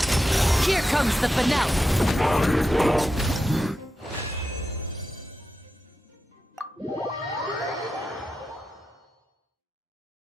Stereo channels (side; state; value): both; normal; correlation 0.89